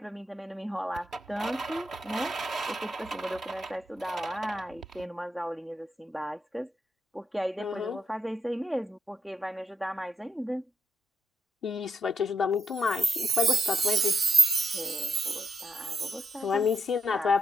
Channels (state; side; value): normal; both; correlation 0.80